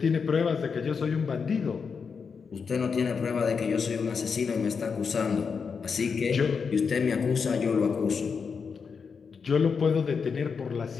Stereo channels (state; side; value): quieter; right; 5.7 dB